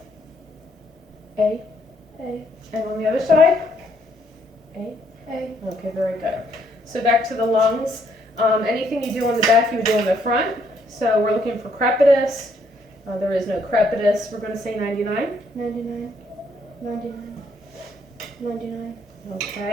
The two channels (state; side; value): normal; both; correlation 0.70